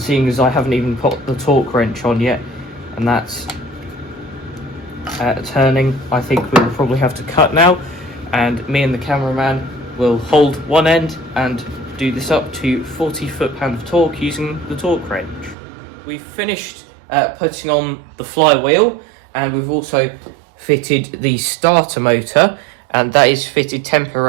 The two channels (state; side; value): drops out; left; at 15.6 s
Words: as I haven't even put the torque wrench on yet, and that's turning, I think we'll probably have to cut now, and me and the cameraman will hold one end and do this up to 40 foot-pound of torque using the torque wrench. We've finished putting on the flywheel, and we've also fitted the starter motor, and that is fitted